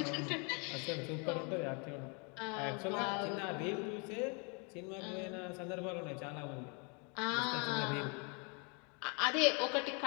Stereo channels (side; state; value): right; quieter; 34.5 dB